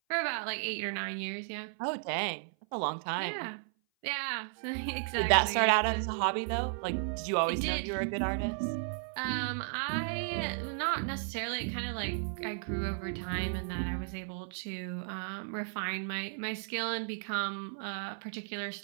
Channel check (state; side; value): silent; left; 55 dB below the other